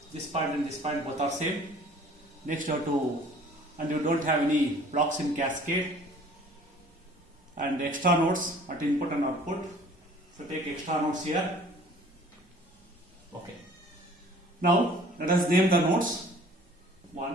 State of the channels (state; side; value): normal; both; correlation 0.51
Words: This point and this point both are same. Next you have to, and you don't have any blocks in cascade and extra nodes at input and output. So take extra nodes here. Okay. Now let us name the nodes.